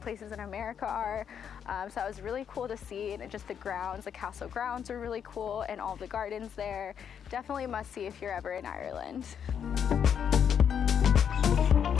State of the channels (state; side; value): quieter; right; 8.1 dB